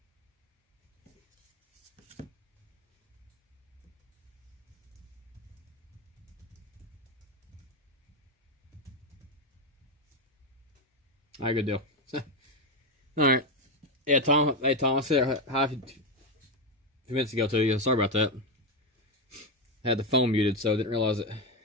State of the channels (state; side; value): normal; both; correlation 0.09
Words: All right, good deal. All right. Yeah, Tom. Hey, Tom. I said hi a few minutes ago to you. Sorry about that. I had the phone muted, so I didn't realize it.